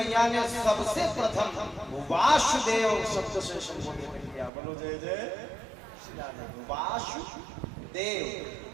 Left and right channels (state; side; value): drops out; left; at 4.5 s